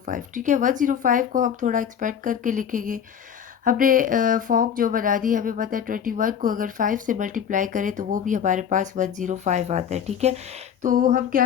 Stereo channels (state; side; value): quieter; right; 8.3 dB